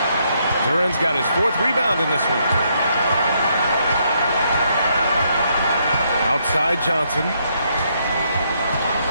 Duran's got his 4th rebound in this one. Outside Johnson.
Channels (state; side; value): inverted; both; correlation -0.74